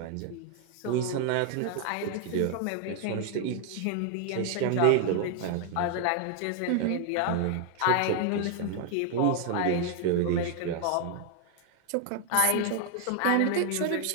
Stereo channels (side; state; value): both; different; correlation 0.00